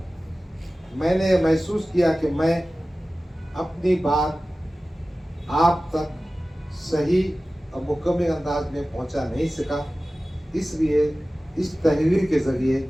मैंने महसूस किया कि मैं अपनी बात आप तक सही और मुकम्मल अंदाज में पहुंचा नहीं सका, इसलिए इस तहरीर के ज़रिए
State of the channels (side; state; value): both; normal; correlation 0.96